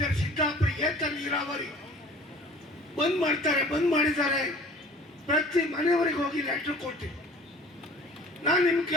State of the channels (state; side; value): normal; both; correlation 0.47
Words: ಸಿದ್ದಾಪುರ ಏತ ನೀರಾವರಿ ಬಂದ್ ಮಾಡ್ತಾರೆ, ಬಂದ್ ಮಾಡಿದ್ದಾರೆ, ಪ್ರತಿ ಮನೆಯವರಿಗೆ ಹೋಗಿ ಲೆಟರ್ ಕೊಟ್ಟು ನಾನು ನಿಮ್ಗೆ